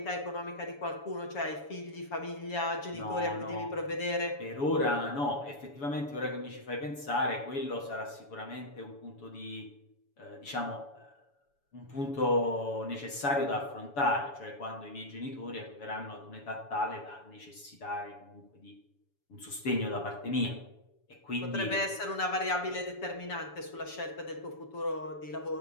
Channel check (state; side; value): late; right; 7.0 ms